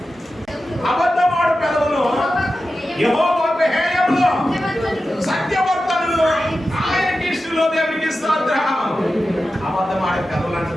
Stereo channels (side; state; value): both; normal; correlation 0.92